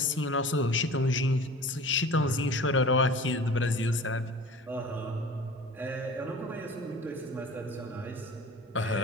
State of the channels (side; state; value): both; normal; correlation 0.40